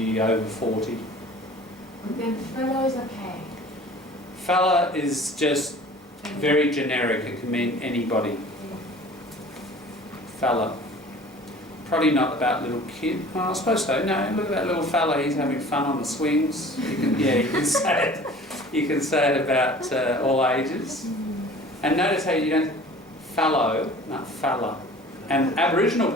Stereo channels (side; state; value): both; normal; correlation 0.45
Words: over 40. Then fellow is okay. Fella is just very generic. It can mean anybody. Fella. Probably not about little kid. Oh, I suppose so. No, look at that little fella. He's having fun on the swings. You can say it. You can say it about all ages. And notice how you don't fallow, not fella. And Aboriginal